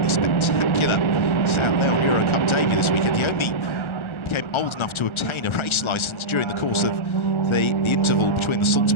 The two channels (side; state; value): right; late; 1.3 ms